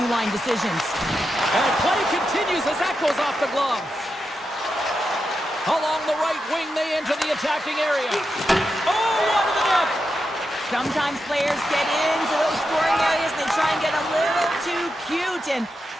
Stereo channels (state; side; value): normal; both; correlation 0.87